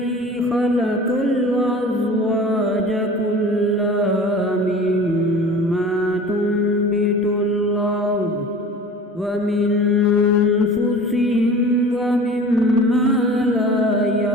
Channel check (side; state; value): both; normal; correlation 0.40